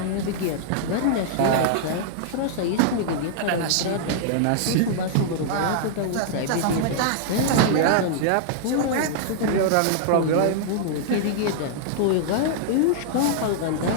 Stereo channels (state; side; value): different; both; correlation -0.01